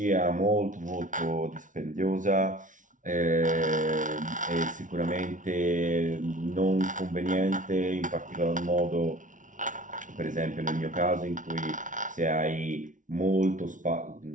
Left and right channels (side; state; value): left; late; 0.37 ms